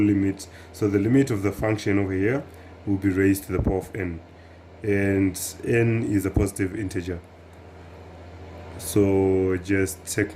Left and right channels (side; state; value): both; identical; correlation 1.00